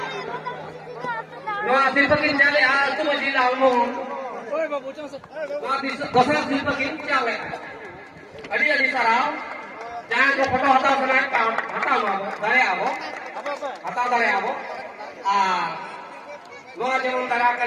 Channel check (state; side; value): identical; both; correlation 1.00